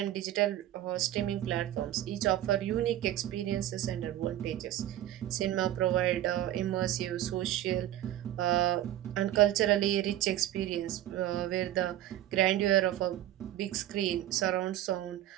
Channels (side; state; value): left; quieter; 12.9 dB